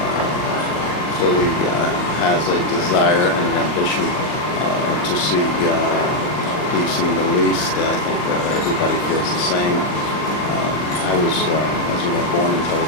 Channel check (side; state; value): right; late; 39 ms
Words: clearly has a desire and an ambition to see peace in the Middle East. I think everybody feels the same. I was, as you know, born in Tel